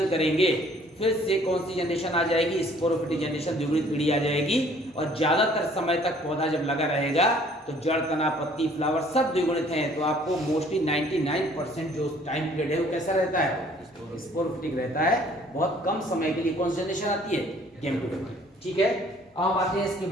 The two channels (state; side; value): normal; both; correlation 0.57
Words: करेंगे फिर से कौन सी जनरेशन आ जाएगी? स्पोरोफिटिक जनरेशन, द्विगुणित पीढ़ी आ जाएगी। और ज्यादातर समय तक पौधा जब लगा रहेगा तो जड़, तना, पत्ती, फ्लावर सब द्विगुणित हैं। तो आपको मोस्टली 99% जो टाइम पीरियड है वो कैसा रहता है? स्पोरोफिटिक रहता है। बहुत कम समय के लिए कौन सी जनरेशन आती है? गैमेटोफिटिक। ठीक है, अब आते हैं इसके